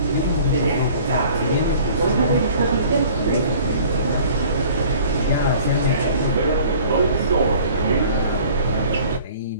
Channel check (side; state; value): both; inverted; correlation -0.49